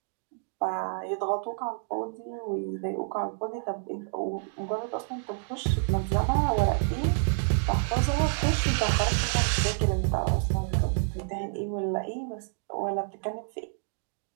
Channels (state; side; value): silent; left; digital silence